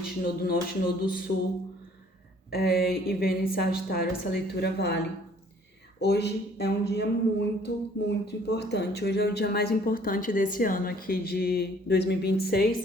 Nodo Norte, Nodo Sul e Vênus em Sagitário, essa leitura vale. Hoje é um dia muito, muito importante. Hoje é o dia mais importante desse ano aqui de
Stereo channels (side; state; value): both; normal; correlation 0.58